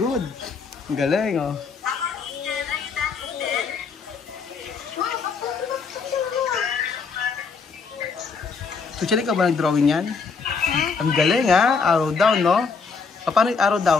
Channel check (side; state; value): right; quieter; 5.1 dB